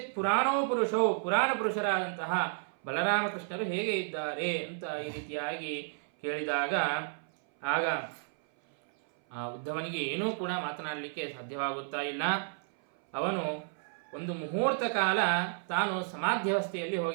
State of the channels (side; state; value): left; silent; 56 dB below the other